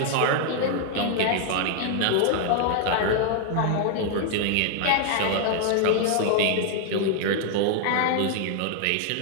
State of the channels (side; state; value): both; different; correlation 0.00